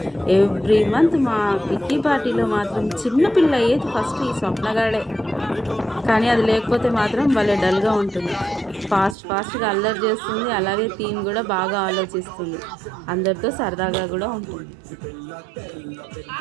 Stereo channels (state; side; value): drops out; left; at 9.2 s